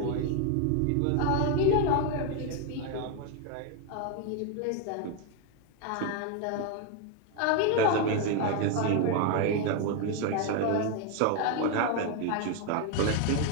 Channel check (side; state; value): both; different; correlation 0.01